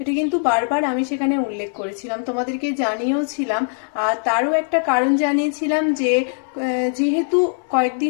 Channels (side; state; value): right; silent; 63 dB below the other